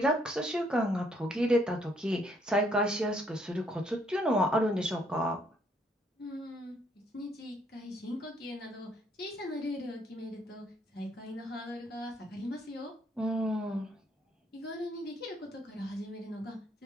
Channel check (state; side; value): normal; both; correlation 0.68